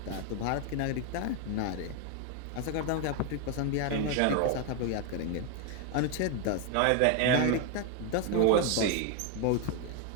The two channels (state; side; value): different; both; correlation 0.01